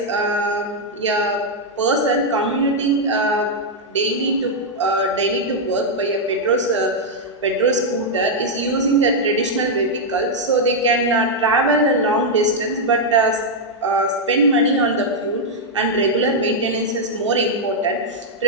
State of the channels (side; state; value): both; normal; correlation -0.03